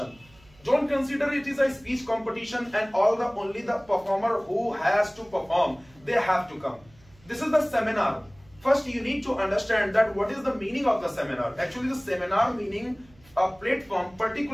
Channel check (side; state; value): right; noise; hum, 28 dB below the sound